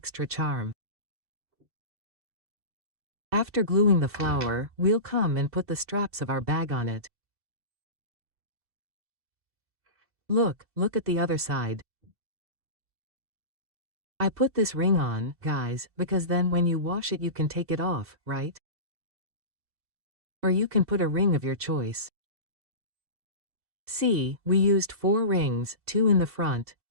charm. After gluing the flower, we'll come and put the straps of our bag on it. Look at the other side. I put this ring on, guys, because then when you wash it you can take it off, right? Or you can put a ring of your choice. See, we used 4 rings, 2 in the front,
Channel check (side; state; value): left; late; 2.7 ms